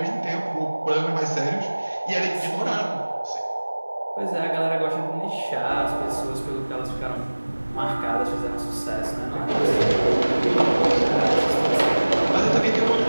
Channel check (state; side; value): inverted; both; correlation -1.00